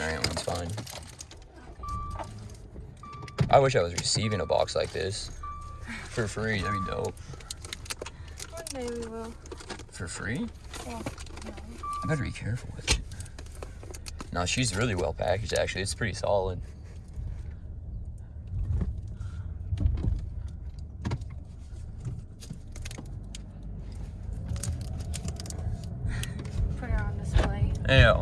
area one's fine. I wish I was receiving a box like this for free. That'd be dope. One day we will. For free? Well, no. I better be careful with it. No, she's really well packaged, actually. It's pretty solid. Put her on display. Yeah,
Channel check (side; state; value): both; identical; correlation 1.00